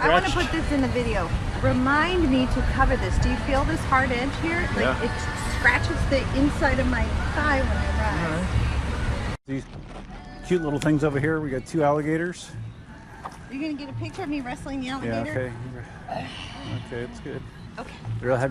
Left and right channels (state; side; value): identical; both; correlation 1.00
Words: I want to put this in the video. Remind me to cover this. Do you feel this hard edge here? Like yeah. It scratches the inside of my thigh when I ride. All right. These cute little things over here. We got two alligators. Are you going to get a picture of me wrestling the alligator? Yeah, okay. Okay, it's good. Okay. I'd rather